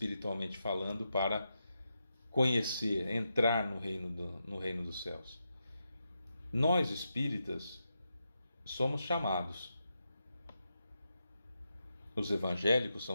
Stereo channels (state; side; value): inverted; both; correlation -0.86